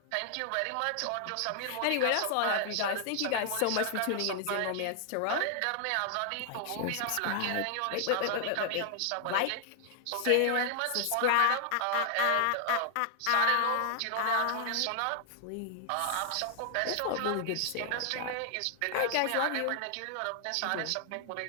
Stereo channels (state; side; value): different; both; correlation 0.00